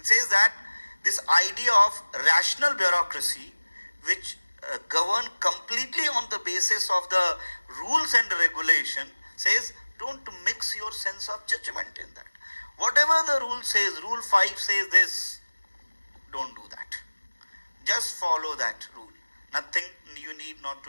says that this idea of rational bureaucracy, which govern completely on the basis of the rules and regulation, says don't mix your sense of judgment in that. Whatever the rule says, rule 5 says this, don't do that. Just follow that rule. Nothing, you need not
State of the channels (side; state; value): both; inverted; correlation -1.00